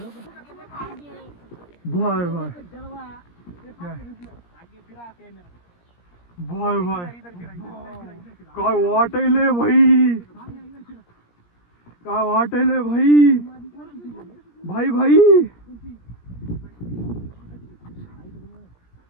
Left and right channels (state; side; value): late; right; 17 ms